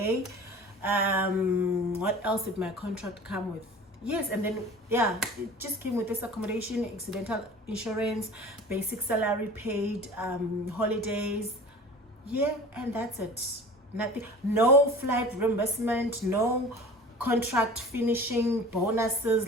What else did my contract come with? Yes, and then yeah, it just came with this accommodation, accidental insurance, basic salary, paid holidays. Yeah, and that's it. Nothing, no flight reimbursement, no contract finishing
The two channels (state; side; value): normal; both; correlation 0.40